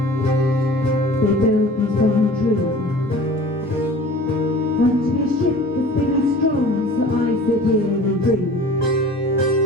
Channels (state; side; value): normal; both; correlation 0.43